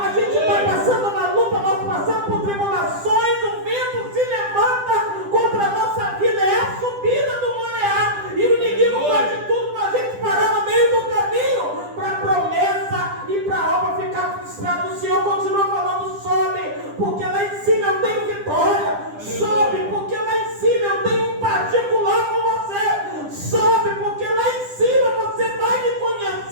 gente está passando uma luta, nós passamos por tribulações, o vento se levanta contra a nossa vida, é a subida do Moriá, e o inimigo faz tudo para a gente parar no meio do caminho, para a promessa e para a obra ficar frustrada. O Senhor continua falando: sobe, porque lá em cima eu tenho vitória. Sobe, porque lá em cima eu tenho um particular com você. Sobe, porque lá em cima você vai me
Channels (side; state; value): left; late; 10 ms